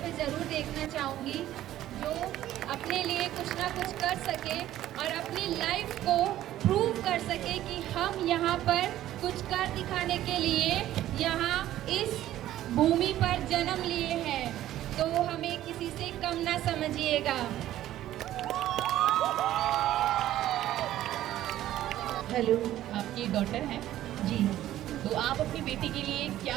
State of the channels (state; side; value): quieter; left; 13.4 dB